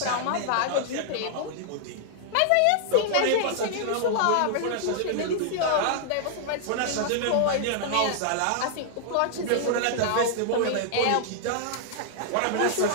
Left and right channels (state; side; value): different; both; correlation -0.01